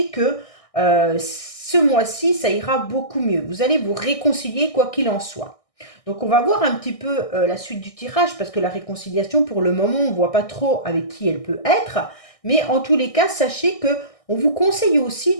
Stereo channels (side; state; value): right; late; 1.6 ms